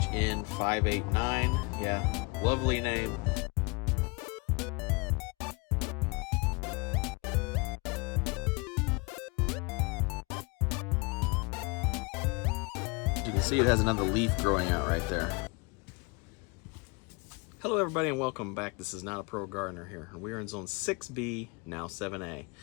589. Yeah, lovely name. You can see it has another leaf growing out right there. Hello everybody and welcome back. This is Not a Pro Gardener here. We are in zone 6B, now 7A.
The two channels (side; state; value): right; quieter; 29.4 dB